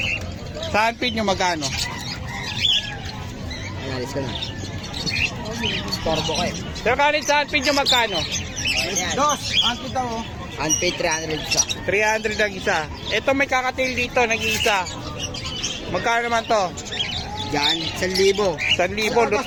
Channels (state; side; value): identical; both; correlation 1.00